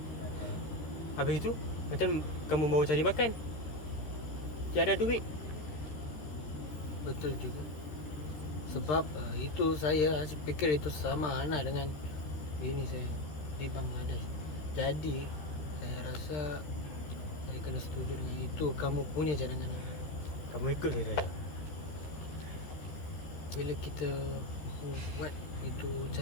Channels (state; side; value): late; right; 13 ms